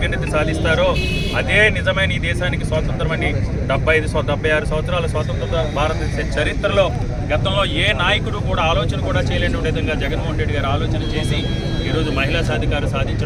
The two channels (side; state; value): both; identical; correlation 1.00